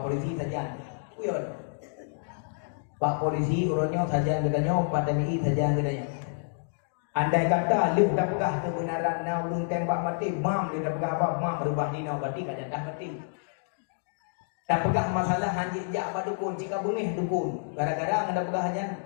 polisi saja. Uyun. Pak polisi urutnya saja katanya, Pak TNI saja katanya. Andai kata lu dah pegah kebenaran nau lu tembak mati, mam dia dah pegah apa? Mam berubah ni nau mati kan dah mati. Tak pegah masalah hanjik jak badukun jika bengih dukun. Gara-gara ada pegah hajan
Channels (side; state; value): right; silent; digital silence